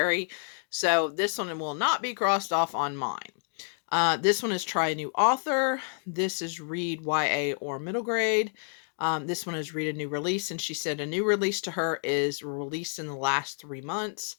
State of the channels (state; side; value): silent; right; 56 dB below the other